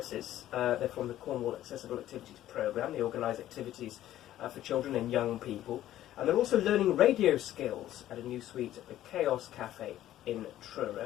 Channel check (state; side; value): quieter; right; 13.1 dB